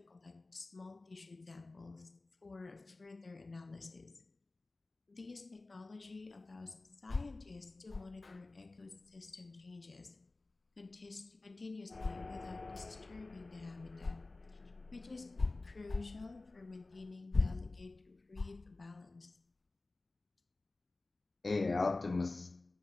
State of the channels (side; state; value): right; quieter; 3.2 dB